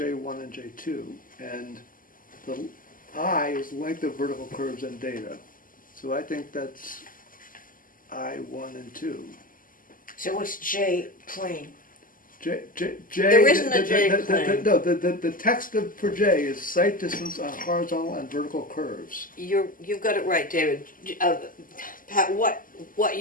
and J2, and the I is length of vertical curves and data. So I think that's I1 and 2. So what's J plain? J, There isn't a J plane. No, the text for J is site distance on horizontal and vertical curves. You've got it right, David. Pat, what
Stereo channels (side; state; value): right; late; 0.40 ms